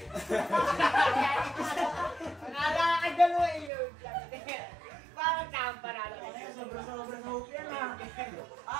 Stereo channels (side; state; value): left; drops out; at 3.7 s